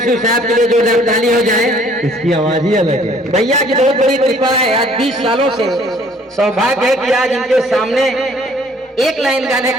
साहब के लिए जोरदार ताली हो जाए। इसकी आवाज ही अलग है। भैया की बहुत बड़ी कृपा है, आज 20 सालों से सौभाग्य है कि आज इनके सामने एक लाइन गाने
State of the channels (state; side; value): normal; both; correlation 0.58